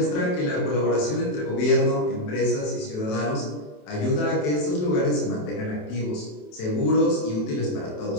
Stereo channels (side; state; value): right; late; 27 ms